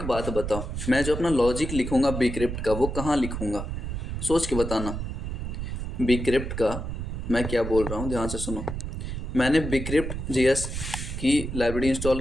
बात बताओ, मैं जो अपना लॉजिक लिखूंगा बीक्रिप्ट का वो कहाँ लिखूंगा? सोच के बताना। बीक्रिप्ट का मैं क्या बोल रहा हूँ, ध्यान से सुनो। मैंने बीक्रिप्ट JS की लाइब्रेरी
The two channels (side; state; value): right; noise; rumble, 5 dB below the sound